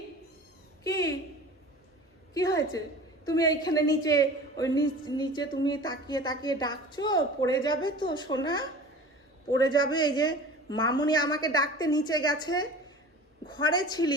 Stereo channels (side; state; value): both; normal; correlation 0.39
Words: কি কি হয়েছে? তুমি এইখানে নিচে, ওই নিচে তুমি তাকিয়ে তাকিয়ে ডাকছো, পড়ে যাবে তো সোনা, পড়ে যাবে। এই যে মামুনি আমাকে ডাকতে নিচে গেছে, ঘরে